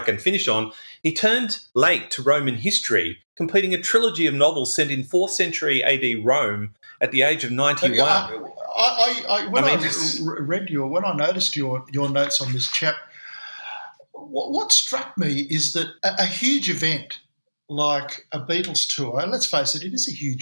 finish on, he turned late to Roman history, completing a trilogy of novels set in 4th century AD Rome at the age of 91. When I noticed your notes on this chap, what struck me is that a huge event like a Beatles tour, and let's face it, it is a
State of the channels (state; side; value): inverted; both; correlation -1.00